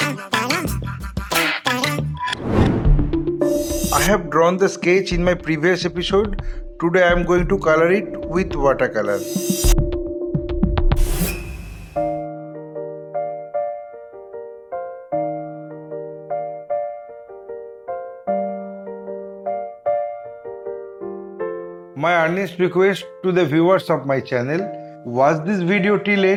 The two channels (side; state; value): both; identical; correlation 1.00